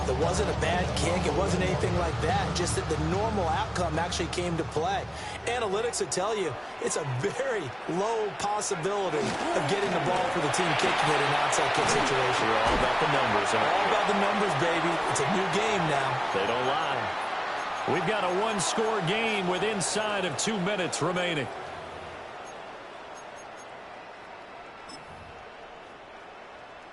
It wasn't a bad kick. It wasn't anything like that. Just that the normal outcome actually came to play. Analytics would tell you it's a very low possibility of getting the ball for the team kicking it in an outside kick situation. You're all about the numbers, aren't you? All about the numbers, baby. It's a new game now. They don't lie. We've got a one-score game with inside of 2 minutes remaining.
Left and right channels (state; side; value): identical; both; correlation 1.00